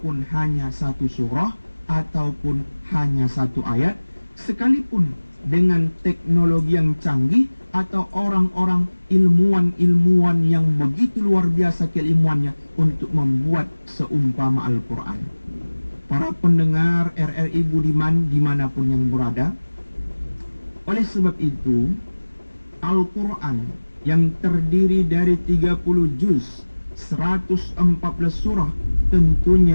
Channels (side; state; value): both; inverted; correlation -1.00